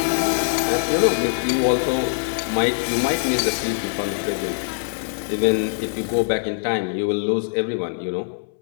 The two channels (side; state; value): right; silent; 64 dB below the other